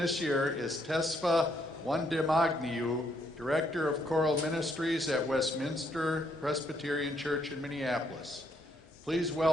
year is Tesfa Wandemagniu, Director of Choral Ministries at Westminster Presbyterian Church in Minneapolis. Please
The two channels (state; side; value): normal; both; correlation 0.73